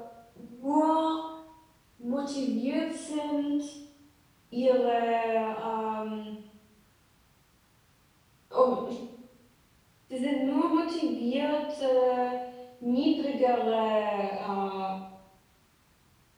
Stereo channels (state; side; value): identical; both; correlation 1.00